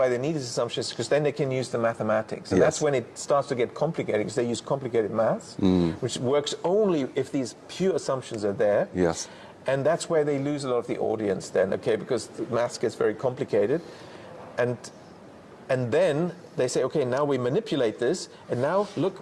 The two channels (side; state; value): both; identical; correlation 1.00